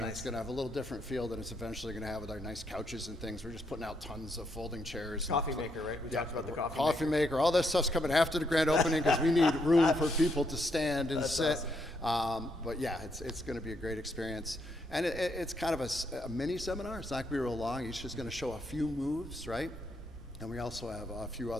it's going to have a little different feel than it's eventually going to have with our nice couches and things. We're just putting out tons of folding chairs. Coffee maker, right? We talked about the coffee maker. All that stuff's coming after the grand opening because we need room for people to stand and sit. Awesome. But yeah, it's going to be a great experience, and it's kind of a mini seminar. It's not going to be real long. Each is going to show a few moves, right? And we also have a few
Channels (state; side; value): normal; both; correlation 0.76